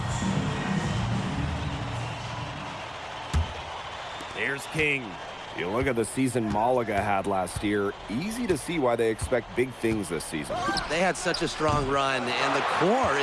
Here's King. You look at the season Malaga had last year, easy to see why they expect big things this season. They had such a strong run, and the core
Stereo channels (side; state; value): both; identical; correlation 1.00